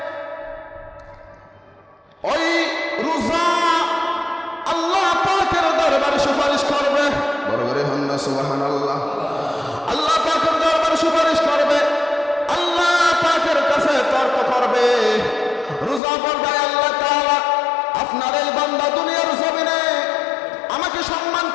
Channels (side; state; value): right; drops out; at 16.0 s